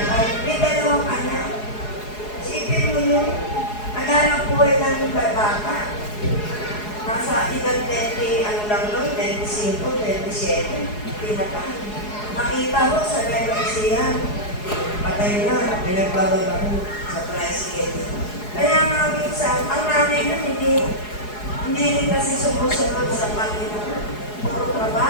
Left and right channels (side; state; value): right; late; 4.8 ms